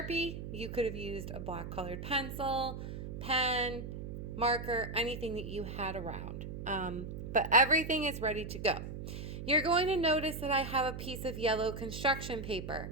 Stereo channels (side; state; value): right; noise; hum, 7 dB below the sound